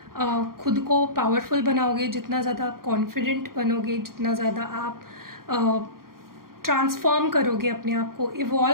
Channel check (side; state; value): left; late; 0.92 ms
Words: खुद को पावरफुल बनाओगे, जितना ज़्यादा आप कॉन्फिडेंट बनोगे, जितना ज़्यादा आप ट्रांसफॉर्म करोगे, अपने आप को